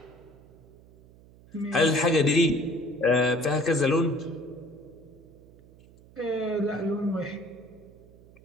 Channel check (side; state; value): right; noise; hum, 24 dB below the sound